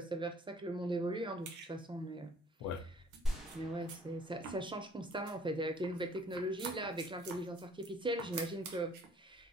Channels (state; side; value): normal; both; correlation 0.58